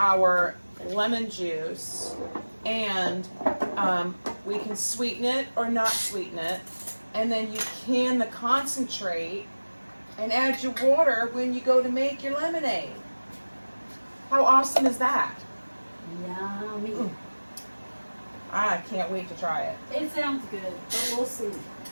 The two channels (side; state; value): both; inverted; correlation -1.00